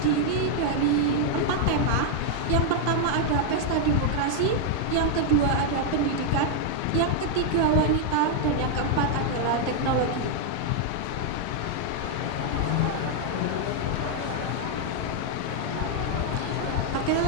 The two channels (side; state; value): both; different; correlation 0.00